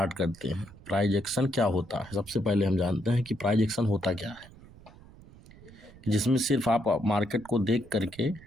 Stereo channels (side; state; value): right; noise; rumble, 21 dB below the sound